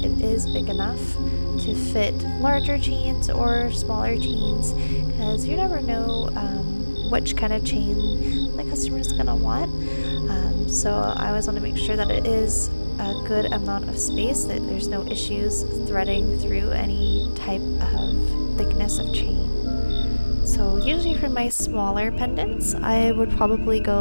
is big enough to fit larger chains or smaller chains, because you never know which kind of chain the customer is going to want. So I always want to make sure that it is a good amount of space, that there's no issues threading through any type of thickness of chain. So usually for my smaller pendants, I would probably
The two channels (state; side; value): inverted; both; correlation -1.00